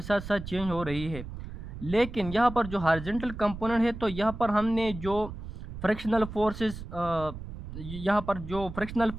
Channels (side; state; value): right; noise; rumble, 10 dB below the sound